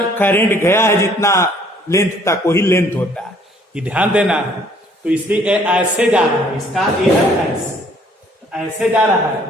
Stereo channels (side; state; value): both; normal; correlation 0.60